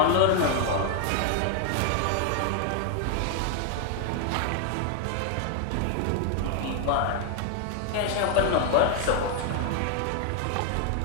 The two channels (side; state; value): both; different; correlation 0.00